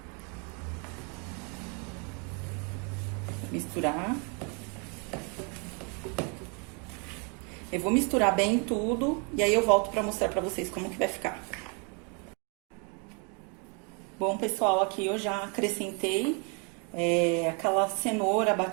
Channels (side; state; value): left; quieter; 35.5 dB